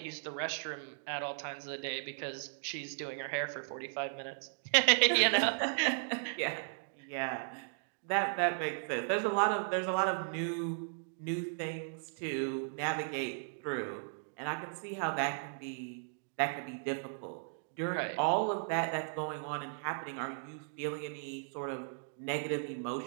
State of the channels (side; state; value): left; silent; digital silence